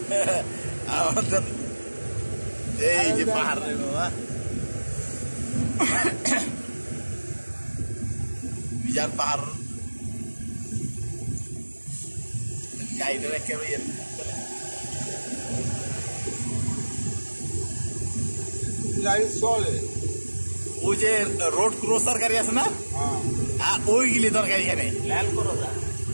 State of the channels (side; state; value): both; inverted; correlation -1.00